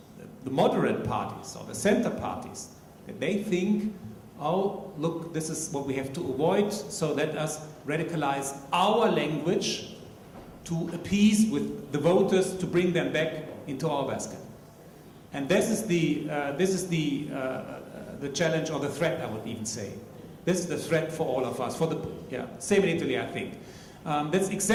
the moderate parties or the center parties, that they think, oh, look, this is what we have to avoid, so let us radicalize our language to appease with the voters, to bring them back into our basket. And this is the challenge or the threat, I would even say. This is the threat for all of us. Same in Italy, I think. That's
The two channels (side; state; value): both; identical; correlation 1.00